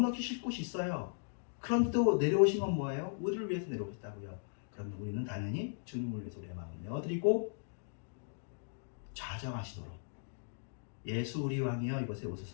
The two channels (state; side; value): silent; right; digital silence